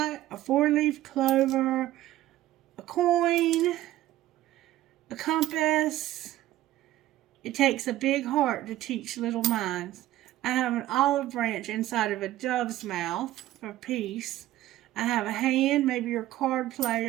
a 4-leaf clover, a coin, a compass. It takes a big heart to teach little minds. I have an olive branch inside of a dove's mouth for peace. I have a hand, maybe you're a card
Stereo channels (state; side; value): quieter; left; 14.7 dB